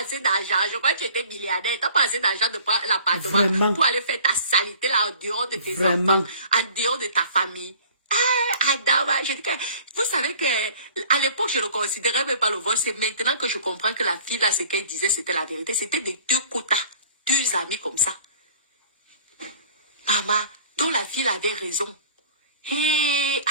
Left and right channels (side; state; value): both; inverted; correlation -0.48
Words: d'argent. Je crois que tu étais milliardaire. T'as pas assez d'argent de prendre l'appartement pour aller faire ta saleté là en dehors de tes enfants, en dehors de ta famille. Ah, Adama, je dis que, vous savez que, à l'époque, je ne considérais même pas le vol. C'est maintenant que je comprends que la fille là, ce qu'elle disait, c'était la vérité. C'était des deux quotas, deux amis comme ça. Maman, dont la fille avait raison. Hé,